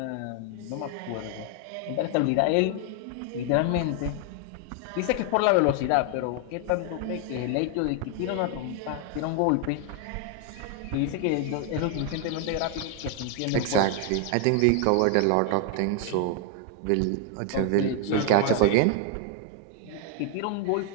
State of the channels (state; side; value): different; both; correlation 0.00